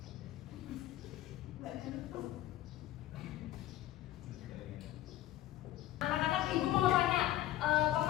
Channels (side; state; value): right; quieter; 14.2 dB